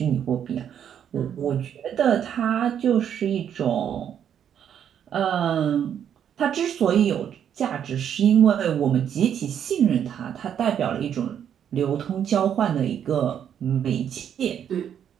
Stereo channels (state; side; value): quieter; left; 9.0 dB